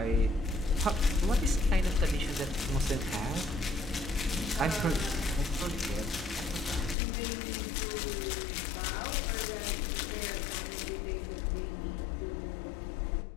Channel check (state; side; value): drops out; right; at 7.0 s